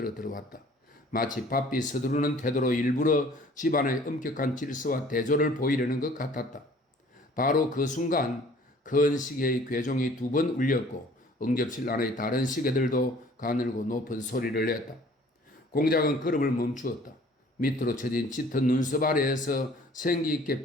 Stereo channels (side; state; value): both; normal; correlation 0.52